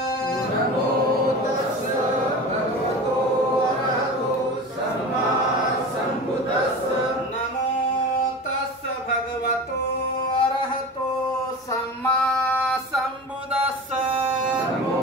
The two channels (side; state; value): both; normal; correlation 0.32